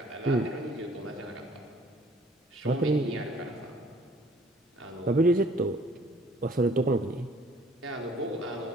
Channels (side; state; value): both; normal; correlation 0.57